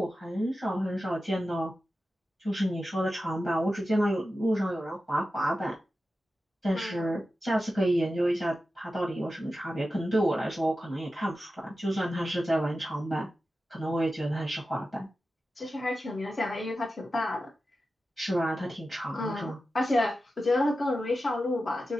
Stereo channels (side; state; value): both; normal; correlation 0.92